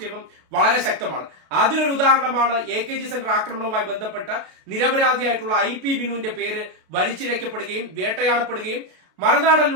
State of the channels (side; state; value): left; late; 32 ms